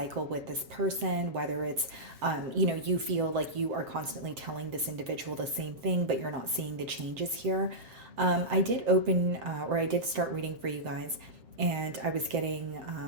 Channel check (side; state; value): left; late; 7.2 ms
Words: with this person, whether it's, you feel like you are constantly telling this individual the same thing, but you're not seeing the changes here. I did I did start reading for you guys, and I was getting